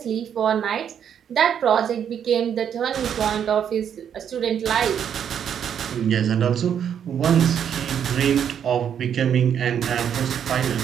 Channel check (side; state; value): left; quieter; 8.6 dB